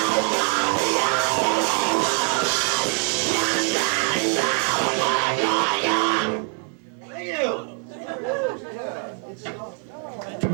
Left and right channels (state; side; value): quieter; left; 35.1 dB